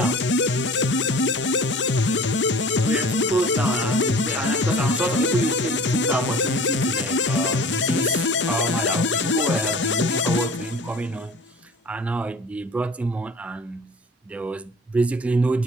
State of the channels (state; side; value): normal; both; correlation 0.44